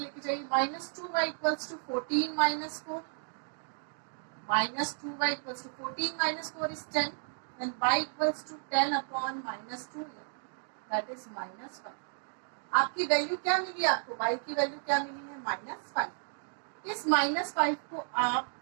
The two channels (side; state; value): left; silent; digital silence